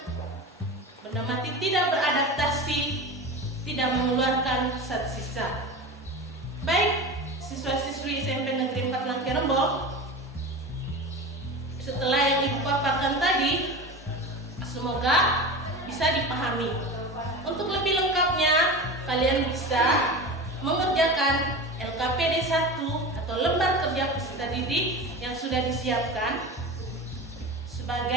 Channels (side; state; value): both; normal; correlation 0.29